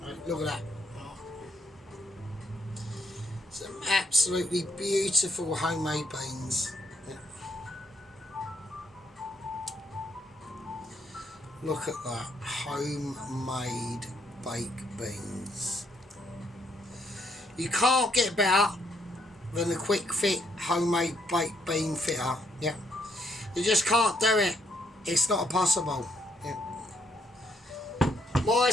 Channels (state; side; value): normal; both; correlation 0.72